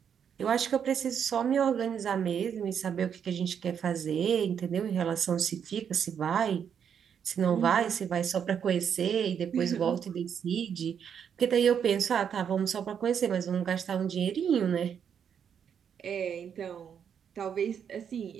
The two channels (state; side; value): quieter; left; 7.9 dB